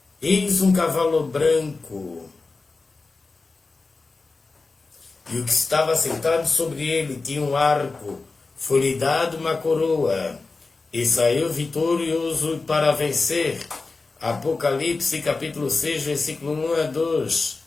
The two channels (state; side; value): quieter; right; 3.8 dB